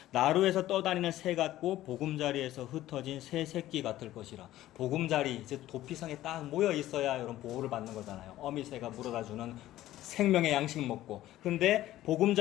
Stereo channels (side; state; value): right; quieter; 14.5 dB